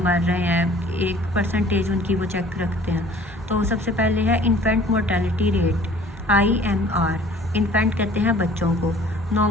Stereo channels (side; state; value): both; normal; correlation 0.51